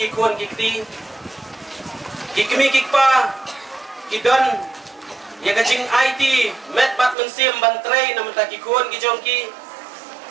ki kun kikti ki kimi kikpa Kidon ya kacing IT met bat mensim bantrei namun tak kikuan kijongki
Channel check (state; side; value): drops out; left; at 7.2 s